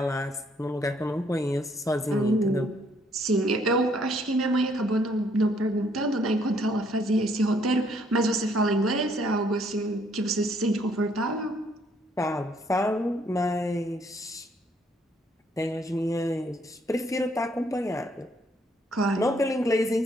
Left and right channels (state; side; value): normal; both; correlation 0.67